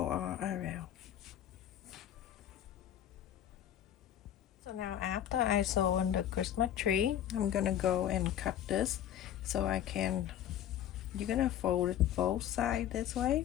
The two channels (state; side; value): quieter; right; 10.8 dB